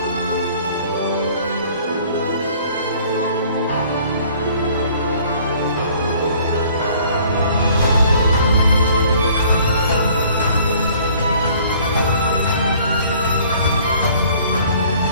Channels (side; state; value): both; inverted; correlation -0.55